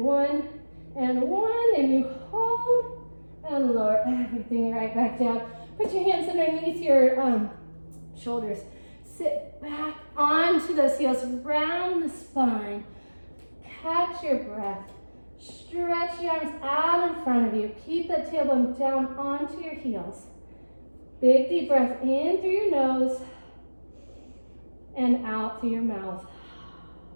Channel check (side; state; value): both; inverted; correlation -1.00